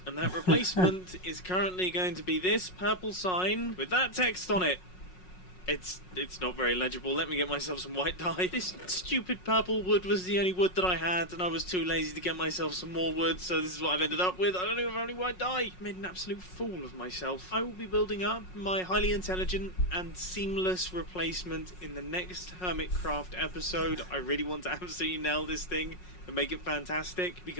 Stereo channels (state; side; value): late; right; 5.5 ms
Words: And that replacement is currently going to be this purple sign with that text on it. It's not very legible. Let me get myself some white dye. This stupid purple wood was the only wood that I had, and I was too lazy to get myself some more wood, so this is what I've ended up with. I don't even have any white dye. I made an absolute fool of myself. I will be building up my highly intelligent and seamless replacement in the next Hermitcraft episode. I really want to absolutely nail this thing and make it fantastic,